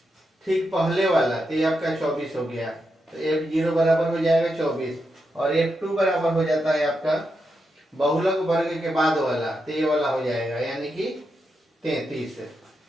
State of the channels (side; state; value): both; normal; correlation 0.85